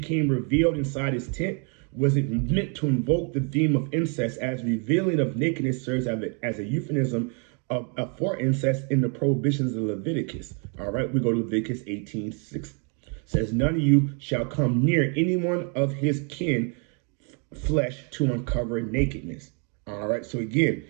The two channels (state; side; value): quieter; left; 38.5 dB